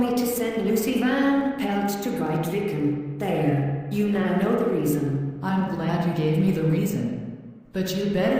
to send Lucy Van Pelt to Grytviken. There, you now know the reason. I'm glad you gave me the reason. But you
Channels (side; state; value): both; identical; correlation 1.00